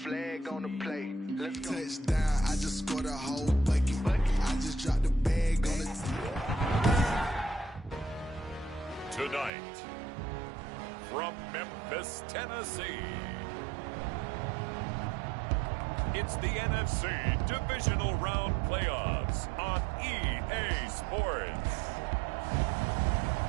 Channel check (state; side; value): drops out; left; at 9.5 s